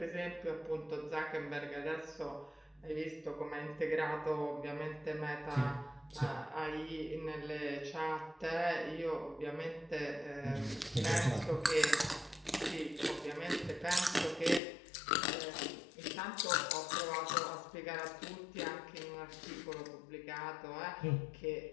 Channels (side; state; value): right; drops out; at 14.6 s